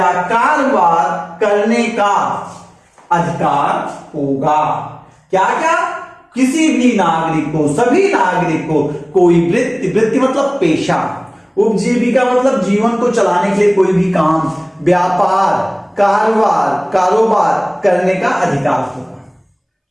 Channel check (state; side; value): identical; both; correlation 1.00